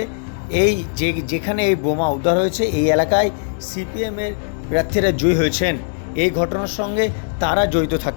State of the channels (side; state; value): right; silent; digital silence